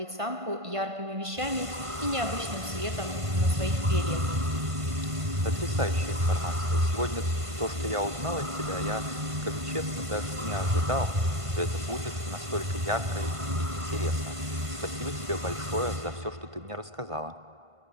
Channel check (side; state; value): left; late; 1.5 ms